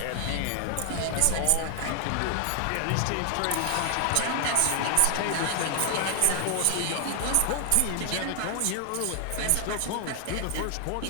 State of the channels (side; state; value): both; different; correlation 0.00